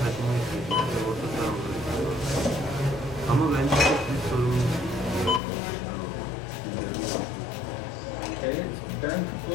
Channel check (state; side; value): drops out; right; at 5.4 s